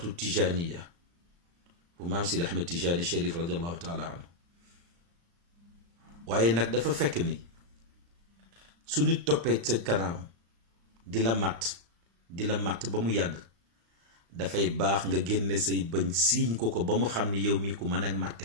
tijaniya bu maam Seydi Ahmed Tijani Cherif radiallahu taala anhu waaye nag dafa fekk ni su nit toppee sa kanam di la màtt ba mu yàgg dafay baax nga génne say bëñ siiñ ko ba mu xam ni yow mii ku mën a màtte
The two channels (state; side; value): late; left; 35 ms